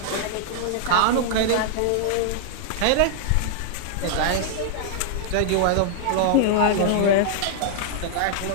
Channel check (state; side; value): different; both; correlation -0.01